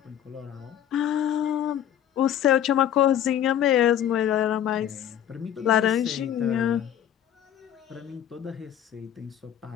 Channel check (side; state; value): right; quieter; 10.4 dB